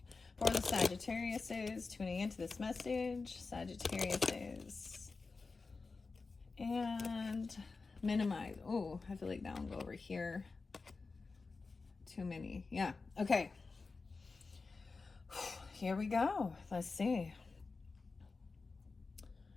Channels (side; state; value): right; quieter; 4.1 dB